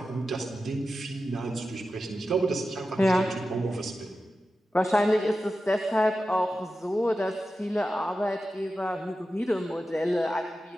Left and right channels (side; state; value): both; normal; correlation 0.92